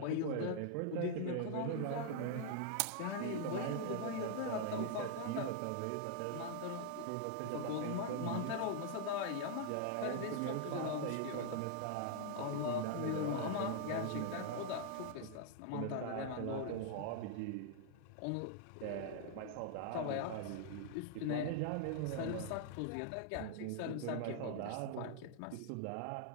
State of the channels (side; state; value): both; different; correlation 0.00